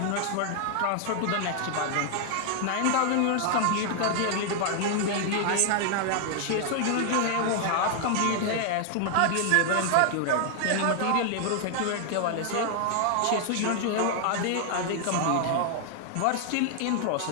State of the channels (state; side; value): different; both; correlation 0.00